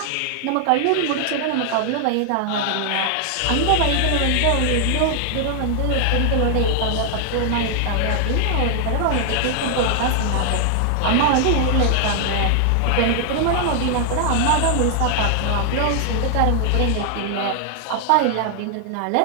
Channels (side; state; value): both; different; correlation 0.00